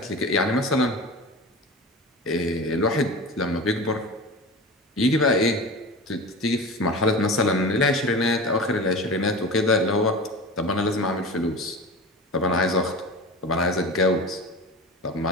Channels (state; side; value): normal; both; correlation 0.31